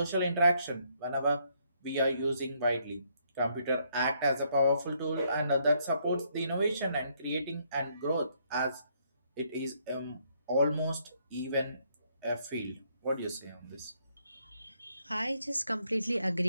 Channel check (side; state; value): both; inverted; correlation -0.71